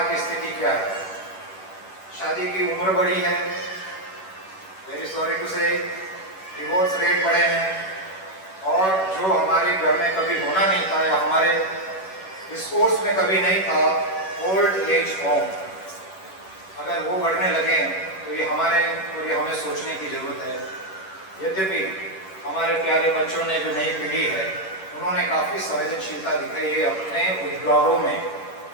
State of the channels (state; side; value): late; right; 11 ms